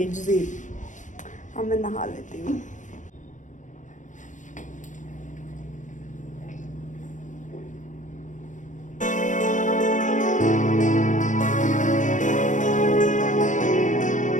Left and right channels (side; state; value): right; late; 0.37 ms